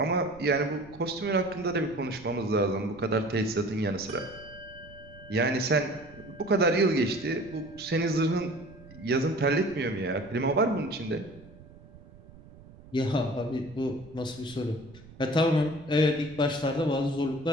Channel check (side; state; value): right; noise; rumble, 20 dB below the sound